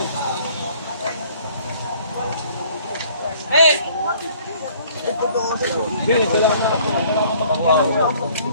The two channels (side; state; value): both; inverted; correlation -0.56